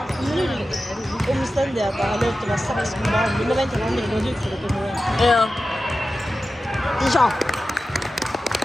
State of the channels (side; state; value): both; normal; correlation 0.93